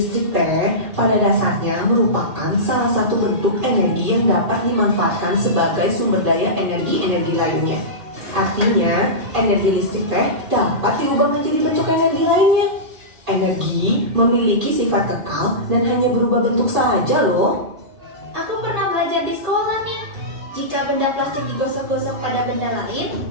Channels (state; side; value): late; left; 2.5 ms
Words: teh pada dasarnya merupakan salah satu bentuk energi yang dapat dimanfaatkan sebagai sumber daya energi-energi lainnya. Artinya, energi listrik teh dapat diubah menjadi bentuk energi lainnya. Energi memiliki sifat kekal dan hanya berubah bentuk saja loh. Aku pernah belajar di sekolah nih. Jika benda plastik digosok-gosok pada benda lain,